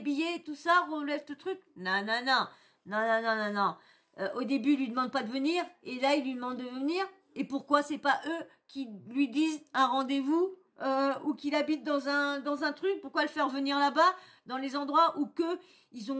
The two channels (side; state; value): both; identical; correlation 1.00